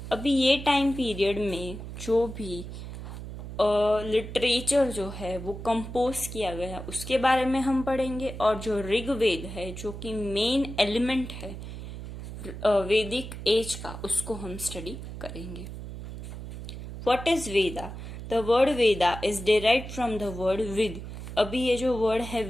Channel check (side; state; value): right; noise; hum, 10 dB below the sound